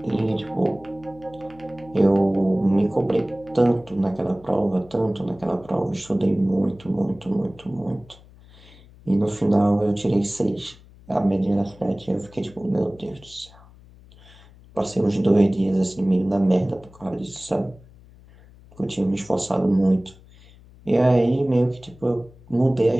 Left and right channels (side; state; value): left; noise; hum, 24 dB below the sound